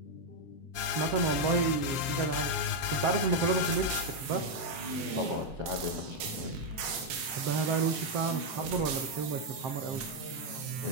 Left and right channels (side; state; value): left; late; 7.8 ms